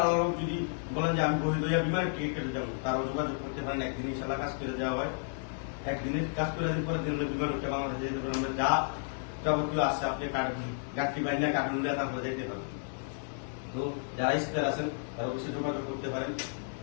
আলাদা যদি বলেন যে আমি বহির হইয়া বিমানের টিকিট কেটে যাবো, তারাও যোগাযোগ করতে পারেন। একদিন ইনশাল্লাহ কাজ করে দেওয়া হয়, একদিনের কাজ করে দিন, পরে দিন বিমান উঠে বাংলাদেশে যেতে পারেন। যা যাবতীয় আসছে আপনি গাড়ি বাইনা কার্টুন দিয়ে তারপরে যেতে পারেন। তো যারা স্পেয়ার আছেন, তারা অবশ্যই যোগাযোগ করতে পারেন।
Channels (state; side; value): silent; right; digital silence